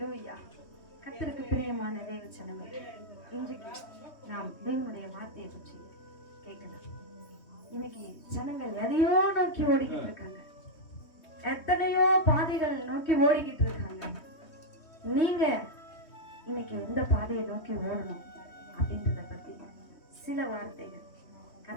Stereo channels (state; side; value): late; right; 3.2 ms